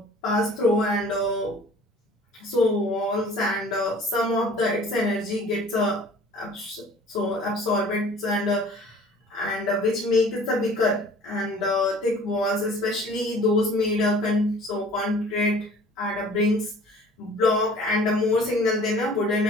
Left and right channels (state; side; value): normal; both; correlation 0.49